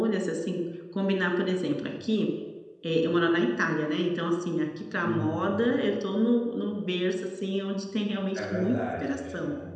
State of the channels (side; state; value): both; identical; correlation 1.00